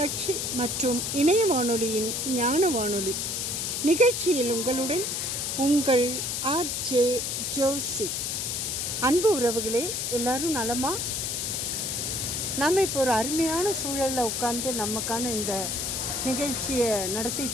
மற்றும் இணைய வானொலியின் ஞான வானொலி நிகழ்ச்சியில் உங்களுடன் உங்கள் ஆர்ஜே ஜோசி. அன்பு உறவுகளே, எல்லாரும் நலமா? நாம் இப்போ ஒரு அருமையான சூழலில் உட்காந்து நமக்கான இந்த நிகழ்ச்சியை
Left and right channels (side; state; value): left; noise; hiss, 1 dB below the sound